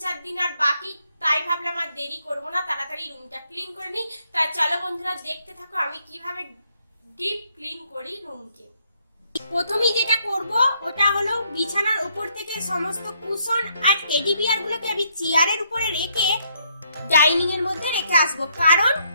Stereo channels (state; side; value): inverted; both; correlation -0.72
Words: দিন আর বাকি, তাই ভাবলাম আর দেরি করব না, তাড়াতাড়ি রুমটা ক্লিন করে নিই। তাই চলো বন্ধুরা দেখতে থাকো আমি কিভাবে ডিপ ক্লিন করি রুমকে। প্রথমেই যেটা করব ওটা হলো বিছানার উপর থেকে সমস্ত কুশন আর টেডি বিয়ার গুলোকে আমি চেয়ারের উপরে রেখে ডাইনিং এর মধ্যে রেখে আসবো, কারণ